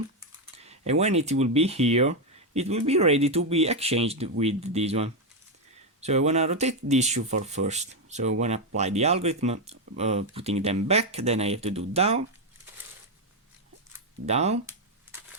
and when it will be here, it will be ready to be exchanged with this one. So I want to rotate this shoe for first. So I want to apply the algorithm, putting them back, then I have to do down, down,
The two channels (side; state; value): both; normal; correlation 0.05